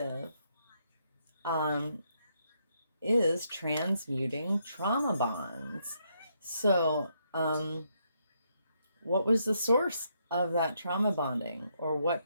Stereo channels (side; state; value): both; inverted; correlation -0.76